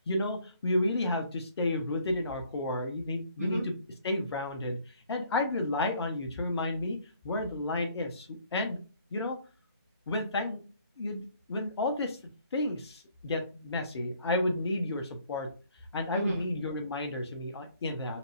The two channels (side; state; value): both; inverted; correlation -0.61